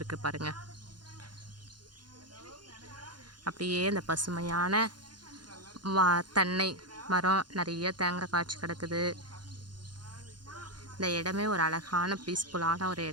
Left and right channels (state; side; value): late; left; 0.71 ms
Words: பாருங்கள். அப்படியே அந்த பசுமையான தென்னை மரம், நிறைய தேங்காய் காய்ச்சி கிடக்குது. இந்த இடமே ஒரு அழகான பீஸ்ஃபுல்லான ஒரு